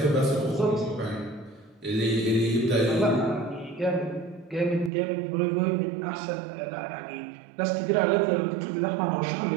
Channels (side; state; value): left; drops out; at 4.9 s